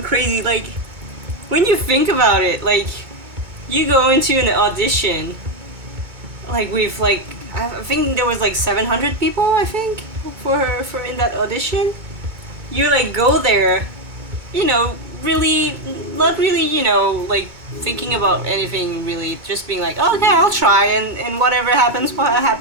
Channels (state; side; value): late; left; 2.2 ms